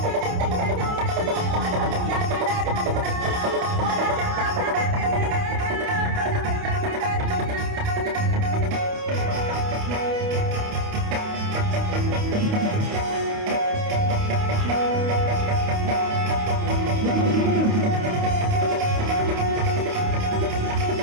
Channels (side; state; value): left; late; 28 ms